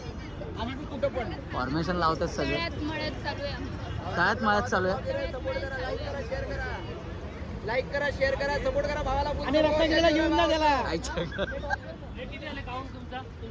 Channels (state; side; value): identical; both; correlation 1.00